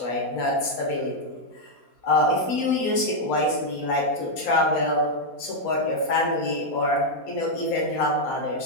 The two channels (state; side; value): late; right; 4.2 ms